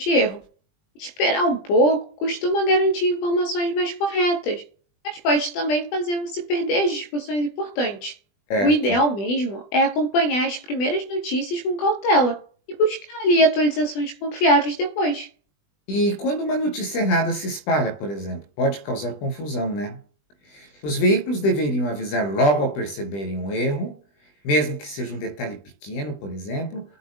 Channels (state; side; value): late; right; 20 ms